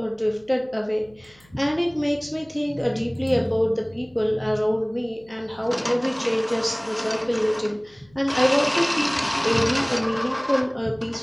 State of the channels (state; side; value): noise; left; hum, 30 dB below the sound